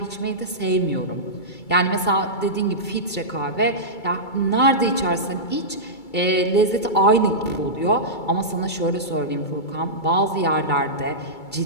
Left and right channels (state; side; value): late; right; 2.3 ms